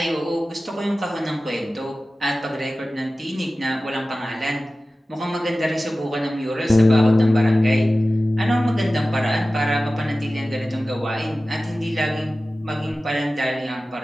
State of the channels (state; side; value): normal; both; correlation 0.96